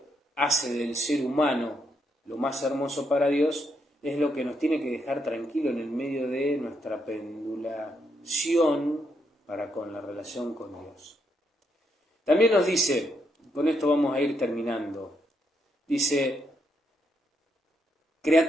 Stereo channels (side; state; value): both; normal; correlation 0.78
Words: hace del ser humano lo más hermoso para Dios, es lo que nos tiene que dejar tranquilo en el medio de nuestra pendulación para con la relación con Dios. También nos dice, con esto vamos a ir terminando, dice,